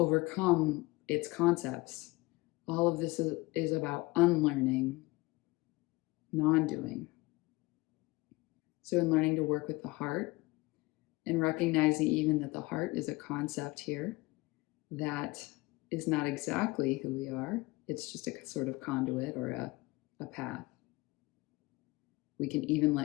its concepts. All of this is about unlearning, non-doing. So in learning to work with the heart and recognizing even that the heart is a concept here that is not exactly who we are, it's just a sort of conduit or a path. We can even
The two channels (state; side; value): quieter; right; 22.0 dB